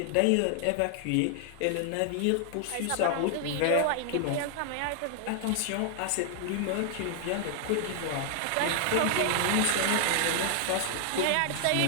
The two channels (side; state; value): both; different; correlation 0.00